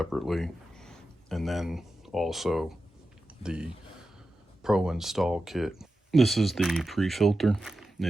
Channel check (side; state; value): both; normal; correlation 0.92